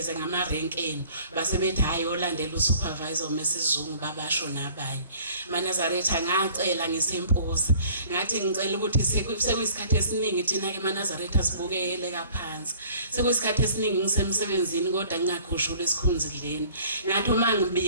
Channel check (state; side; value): inverted; both; correlation -0.52